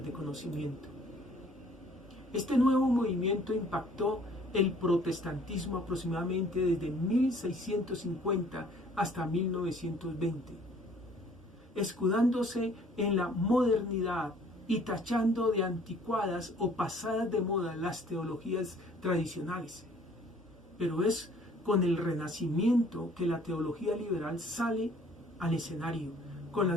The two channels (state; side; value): normal; both; correlation 0.56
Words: de conocimiento. Este nuevo movimiento impactó el protestantismo aproximadamente desde 1650 hasta 1920, escudándose en la modernidad y tachando de anticuadas o pasadas de moda las teologías tradicionales. Pero es con el Renacimiento que la teología liberal sale al escenario, con